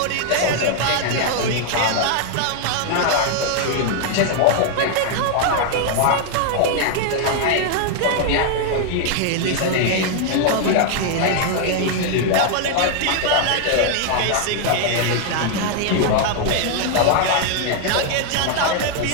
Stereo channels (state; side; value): different; both; correlation 0.00